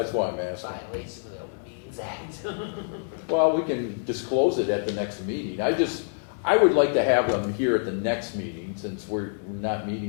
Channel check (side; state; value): right; silent; digital silence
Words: why I'm asking. Violation of the Open Meetings Act. Well, we can disclose it at the next meeting. I would like to have them here at the next meeting, since we're not